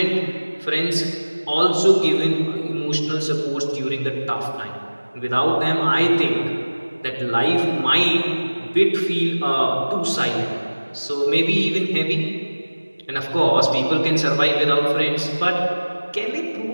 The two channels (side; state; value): both; inverted; correlation -1.00